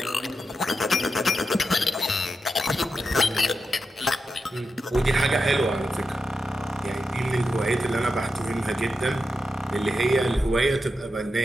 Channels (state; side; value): normal; both; correlation 0.88